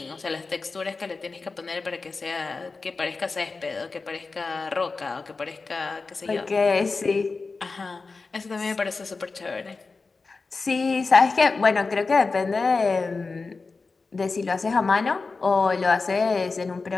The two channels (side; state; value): right; quieter; 4.1 dB